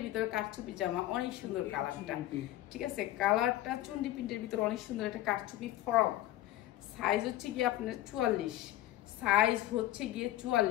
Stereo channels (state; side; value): quieter; right; 14.8 dB